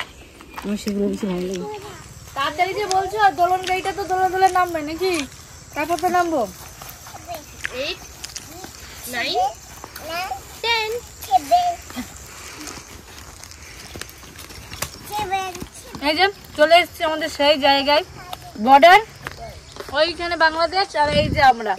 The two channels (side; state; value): both; identical; correlation 1.00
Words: আমার সেগুলো বেশি ভালো লাগে। তাড়াতাড়ি যে বলছো, দোলন গাড়িটা তো দোলা দোলা নামবে নাকি? তারপর তো নামবো। 8 9 10 এই যে চলে এসেছি আমাদের সেই জায়গায়, বর্ডার। ওইখানে বাংলাদেশ, আর এই যে আমরা।